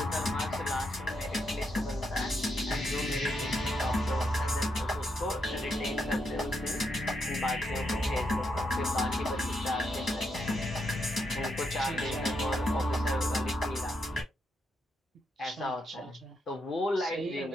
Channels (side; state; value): both; normal; correlation 0.80